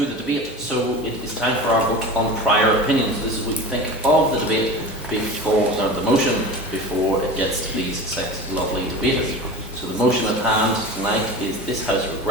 the debate. So it is time for our vote on prior opinions. This is what you think of the debate before, the motion before it gets to these 6 lovely debaters. So the motion at hand tonight is this House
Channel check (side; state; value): both; normal; correlation 0.32